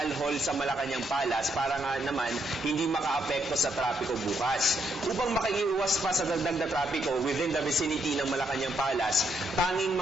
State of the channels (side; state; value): both; normal; correlation 0.76